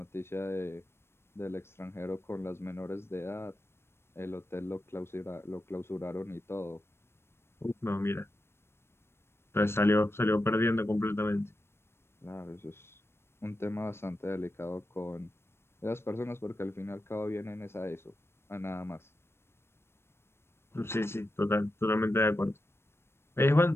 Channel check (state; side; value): late; right; 0.12 ms